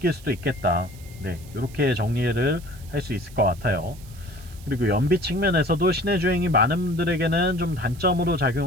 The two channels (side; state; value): right; noise; hiss, 22 dB below the sound